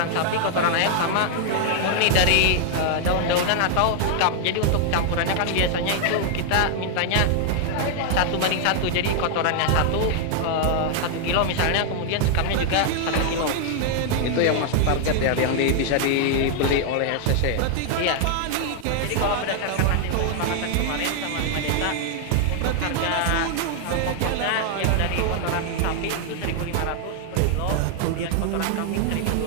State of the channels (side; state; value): both; different; correlation 0.00